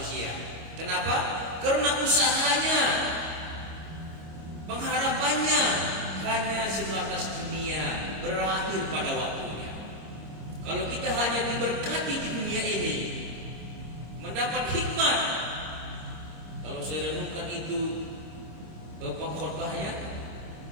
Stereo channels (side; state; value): left; late; 26 ms